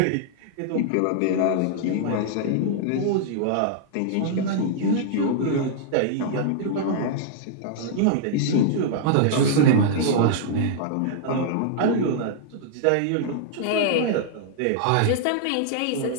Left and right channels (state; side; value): different; both; correlation -0.01